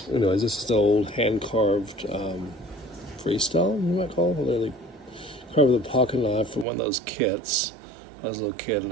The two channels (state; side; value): drops out; left; at 6.7 s